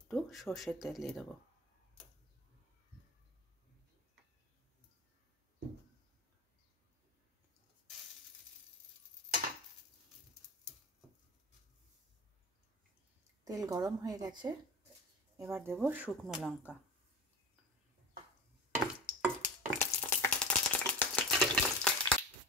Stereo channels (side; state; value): both; normal; correlation 0.28